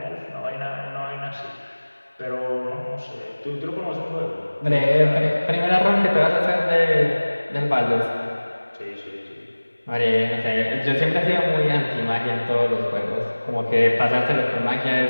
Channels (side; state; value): both; inverted; correlation -1.00